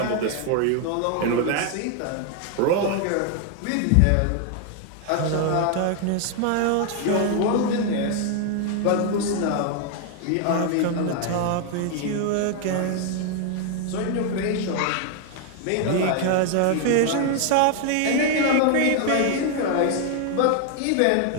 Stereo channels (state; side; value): different; both; correlation 0.00